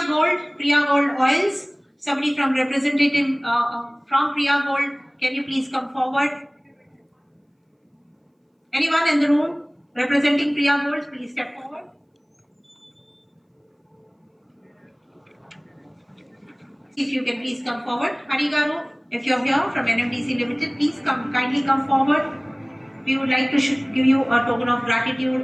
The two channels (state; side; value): identical; both; correlation 1.00